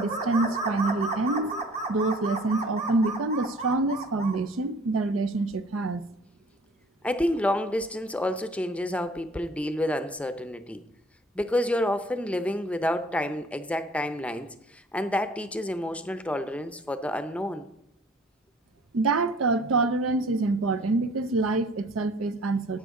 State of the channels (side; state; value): both; normal; correlation 0.53